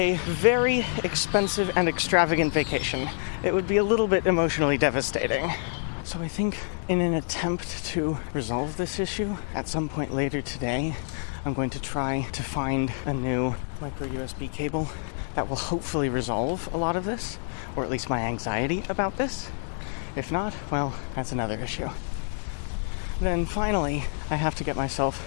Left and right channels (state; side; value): silent; right; digital silence